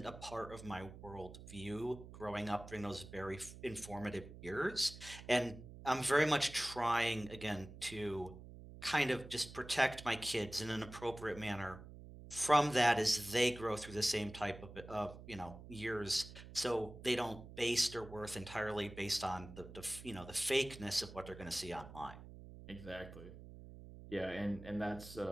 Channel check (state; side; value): noise; right; hum, 15 dB below the sound